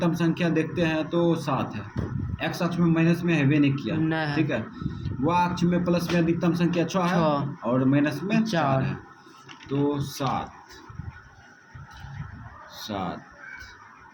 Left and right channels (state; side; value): identical; both; correlation 1.00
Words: संख्या देखते हैं तो 7 है, एक्स अक्ष में माइनस में हैवे नहीं किया, ठीक है। वह अक्ष में प्लस में अधिकतम संख्या 6 है और माइनस में 4 है, तो 7